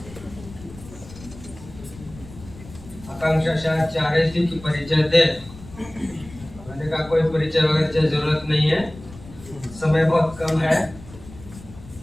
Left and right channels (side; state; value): left; noise; rumble, 18 dB below the sound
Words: आकांक्षा शायद चाह रही थी कि परिचय दे, मैंने कहा कोई परिचय वगैरह की जरूरत नहीं है, समय बहुत कम है,